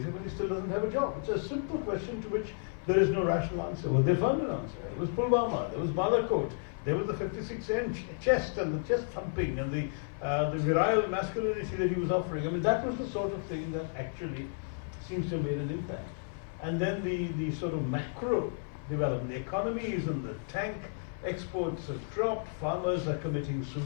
when he still doesn't have a job. It's a simple question to which there is no rational answer. Well, they found an answer. It was Pulwama, there was Balakot, there was the 56-inch chest and the chest thumping and the virile masculinity that he was offering. I mean, that was the sort of thing that actually seems to have made an impact. And then the sort of macro development. The economy is in the tank, exports have dropped, farmers are committing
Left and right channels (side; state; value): right; silent; 56 dB below the other